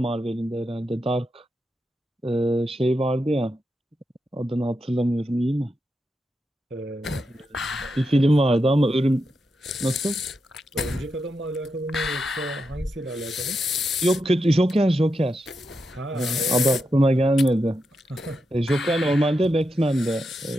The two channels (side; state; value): both; normal; correlation 0.86